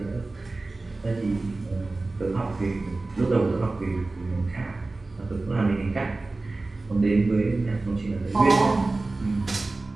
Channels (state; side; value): quieter; left; 3.3 dB